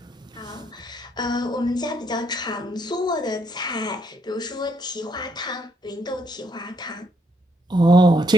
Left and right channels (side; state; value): both; normal; correlation 0.72